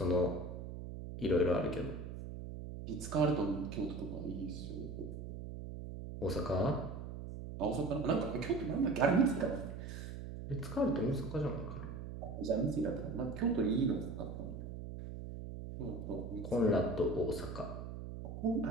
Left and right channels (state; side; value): noise; right; hum, 8 dB below the sound